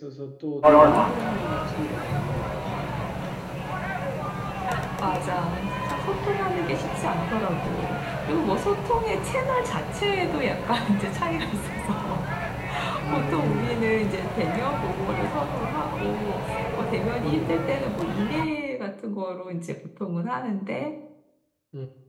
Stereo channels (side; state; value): both; identical; correlation 1.00